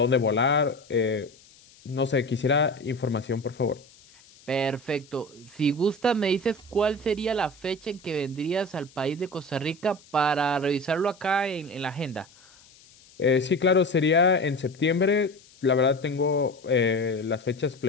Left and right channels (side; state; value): left; noise; hiss, 26 dB below the sound